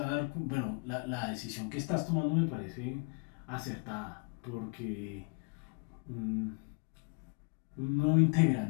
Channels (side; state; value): right; quieter; 36.0 dB